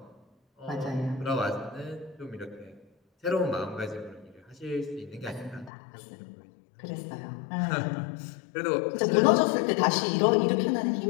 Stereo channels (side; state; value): right; drops out; at 5.7 s